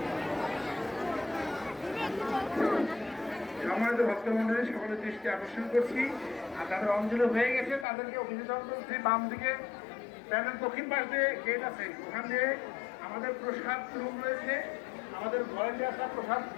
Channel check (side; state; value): right; drops out; at 7.9 s